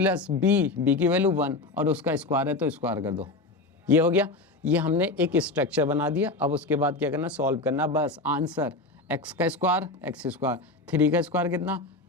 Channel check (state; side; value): quieter; right; 3.2 dB